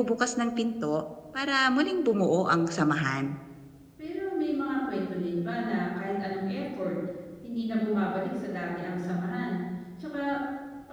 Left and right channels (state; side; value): identical; both; correlation 1.00